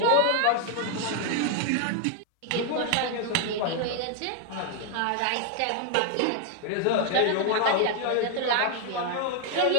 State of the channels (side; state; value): both; different; correlation 0.00